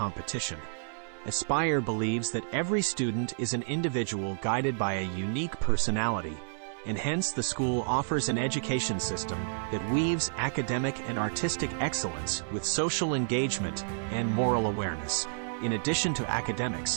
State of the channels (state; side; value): silent; left; digital silence